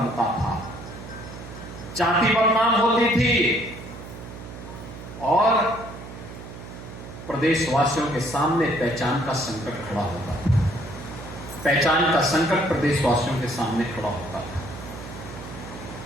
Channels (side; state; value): right; noise; hum, 13 dB below the sound